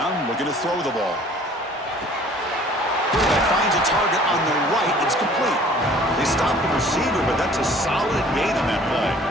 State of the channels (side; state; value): both; normal; correlation 0.52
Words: looking to throw the ball. Quarterback finds a target on the right. It's complete. They stop the receiver, but that's a solid gain on that play.